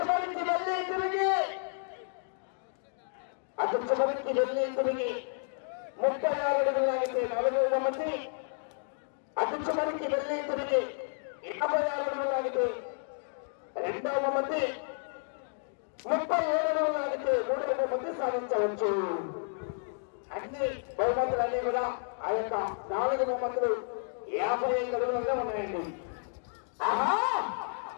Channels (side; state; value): right; silent; digital silence